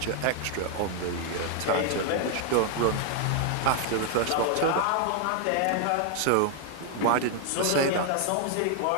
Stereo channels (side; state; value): both; different; correlation 0.00